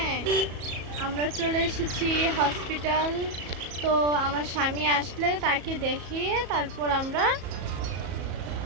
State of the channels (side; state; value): left; late; 34 ms